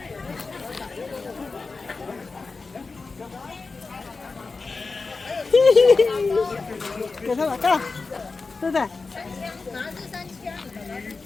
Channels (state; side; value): quieter; right; 4.1 dB